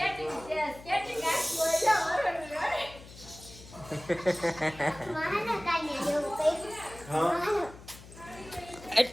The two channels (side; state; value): left; noise; hum, 18 dB below the sound